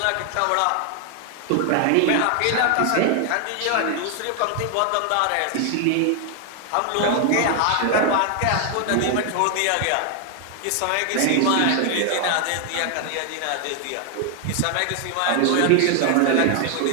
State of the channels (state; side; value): different; both; correlation 0.00